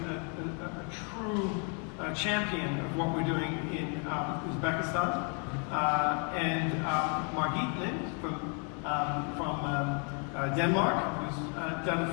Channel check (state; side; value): quieter; right; 38.9 dB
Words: true champion of what we're doing in Uzbekistan, and Margit Lind from Denmark, who's done